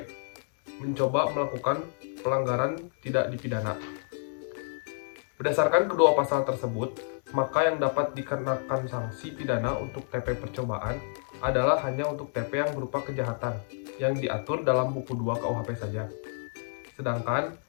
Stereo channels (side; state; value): right; silent; 58 dB below the other